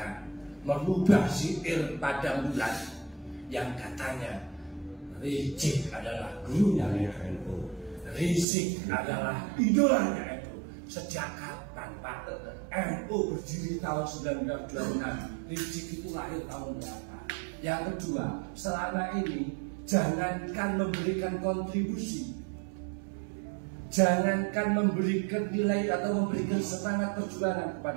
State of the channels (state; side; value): drops out; left; at 8.5 s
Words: merubah syair pada bulan yang katanya Rizik adalah gurunya NU, Rizik adalah idolanya NU. Sejak kapan Pak? NU berdiri tahun 1926, Rizik itu lahir tahun berapa? Yang kedua, selama ini jangankan memberikan kontribusi, jangankan memberikan nilai atau memberikan semangat perjuangan